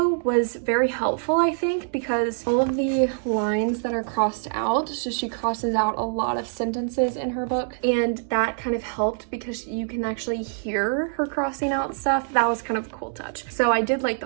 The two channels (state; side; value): silent; left; digital silence